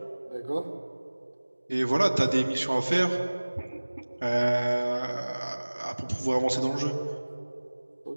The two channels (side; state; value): both; inverted; correlation -1.00